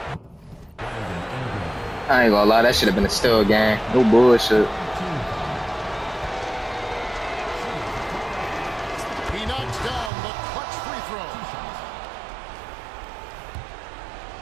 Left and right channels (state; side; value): drops out; left; at 10.1 s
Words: I ain't gonna lie, that should have been a still game. No bullshit. He knocks down the clutch free throw.